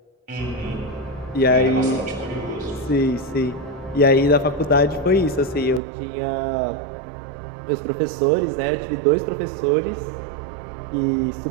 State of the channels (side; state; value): left; drops out; at 5.8 s